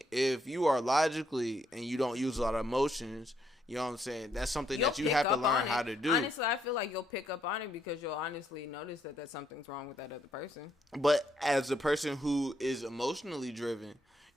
if you are logically and you don't use a lot of emotions, you know what I'm saying? That's something that you have to learn how to do. Honestly, I feel like you'll pick up on it because you'll honestly notice that something's wrong with that other person. But as a person who is emotionally driven,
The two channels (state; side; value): normal; both; correlation 0.74